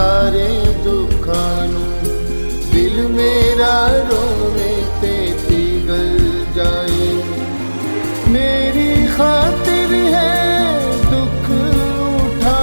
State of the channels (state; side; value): inverted; both; correlation -1.00